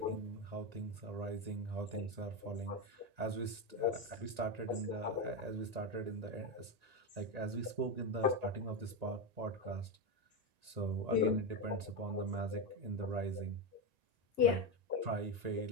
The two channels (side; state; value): left; late; 1.9 ms